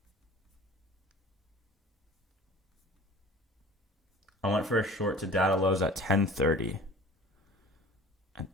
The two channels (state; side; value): normal; both; correlation 0.44